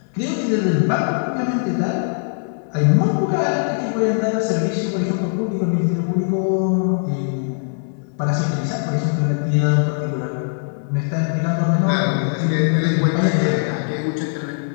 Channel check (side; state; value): right; silent; digital silence